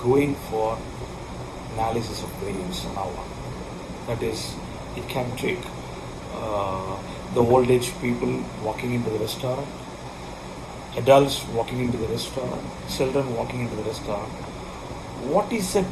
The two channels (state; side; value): identical; both; correlation 1.00